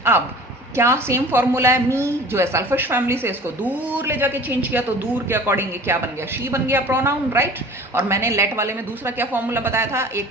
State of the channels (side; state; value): both; normal; correlation 0.44